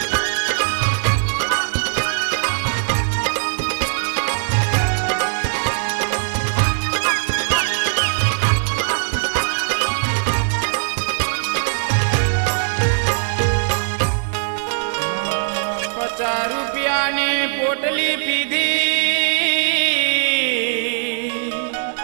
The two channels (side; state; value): left; silent; 61 dB below the other